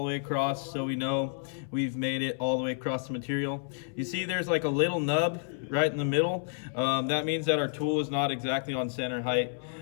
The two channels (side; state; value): right; silent; 58 dB below the other